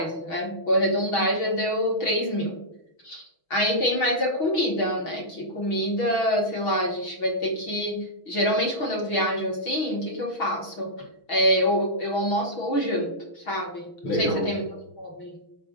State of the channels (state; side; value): late; right; 6.2 ms